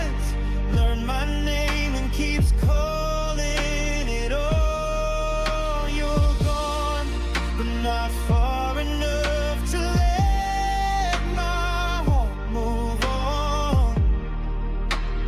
learned my name and keeps calling it all. You're gone, but not far enough to let my heart move on.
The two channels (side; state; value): both; identical; correlation 1.00